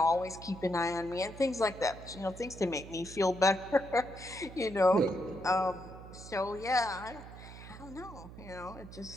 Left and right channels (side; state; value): right; noise; hum, 15 dB below the sound